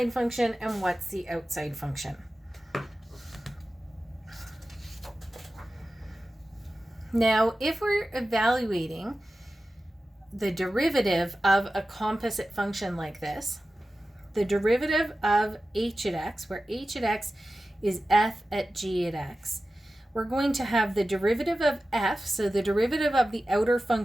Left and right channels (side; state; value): both; normal; correlation 0.94